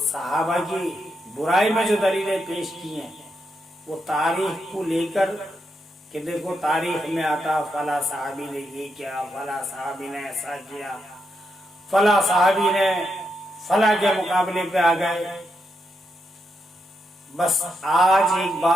सहाबा की बुराई में जो दलीलें पेश की हैं, वो तारीख को लेकर कि देखो तारीख में आता फला साहबी ने ये किया, फला साहबी ने ऐसा किया, फला साहबी ने फला के मुकाबले पे आ गए। बस आज एक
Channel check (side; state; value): both; normal; correlation 0.83